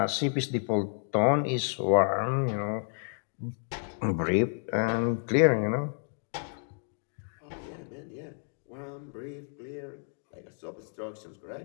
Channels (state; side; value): silent; right; 57 dB below the other